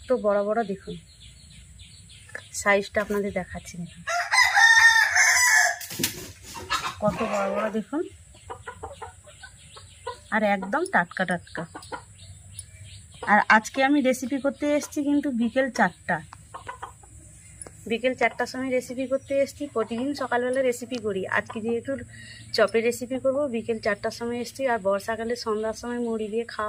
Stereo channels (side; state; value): both; identical; correlation 1.00